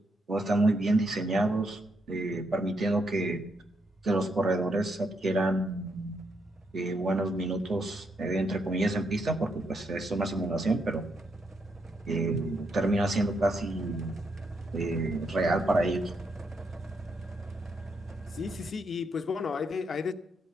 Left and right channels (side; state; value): both; normal; correlation 0.78